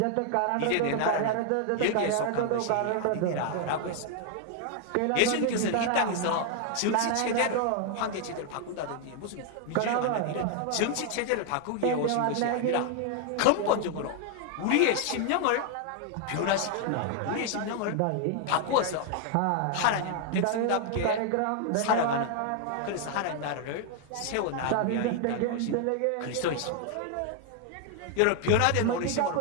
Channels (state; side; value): different; both; correlation 0.00